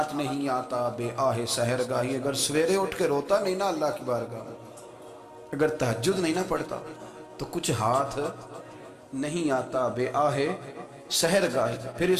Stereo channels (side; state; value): both; identical; correlation 1.00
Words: نہیں آتا بے آہ سحر گاہی۔ اگر سویرے اٹھ کے روتا نہیں نا اللہ کی بارگاہ، اگر تہجد نہیں نہ پڑھتا، تو کچھ ہاتھ نہیں آتا بے آہ سحر گاہی، پھر